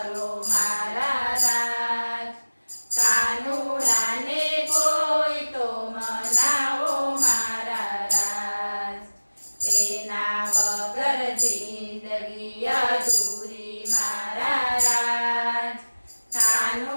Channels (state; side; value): inverted; both; correlation -1.00